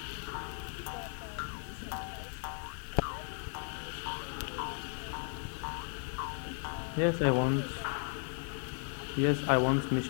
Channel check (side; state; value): right; silent; 54 dB below the other